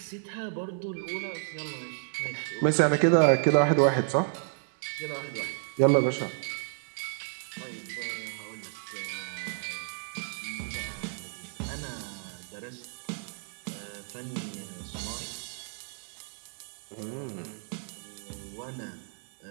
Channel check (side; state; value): left; silent; digital silence